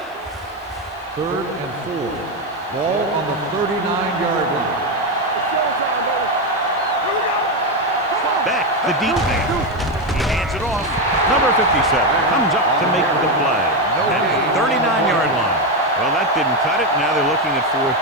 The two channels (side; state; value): left; noise; hiss, 30 dB below the sound